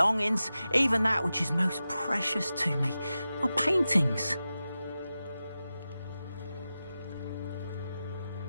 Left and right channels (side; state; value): both; inverted; correlation -0.93